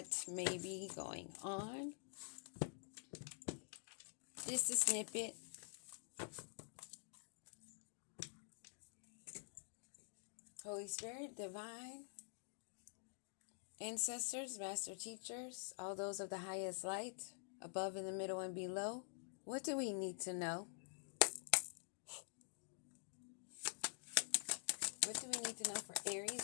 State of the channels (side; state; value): right; silent; digital silence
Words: may be going on. Just a snippet. Holy Spirit, divine, ancestors, master teachers, all those of the highest light, above, in the middle, and below. What do we need to know? What do we need to know for